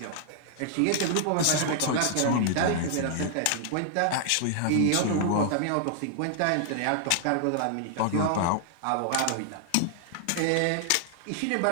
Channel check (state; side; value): different; both; correlation -0.01